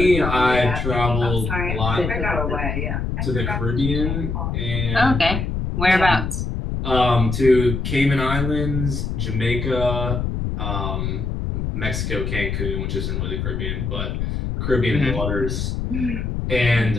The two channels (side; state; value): left; noise; rumble, 2 dB below the sound